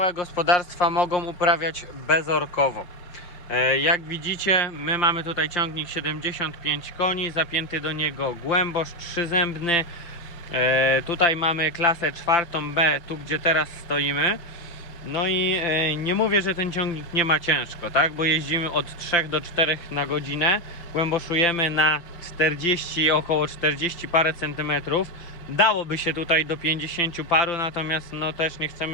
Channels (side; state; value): right; late; 6.0 ms